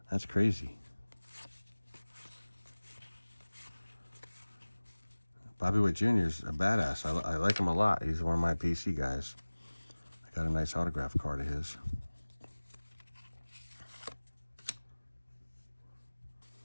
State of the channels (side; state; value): both; inverted; correlation -1.00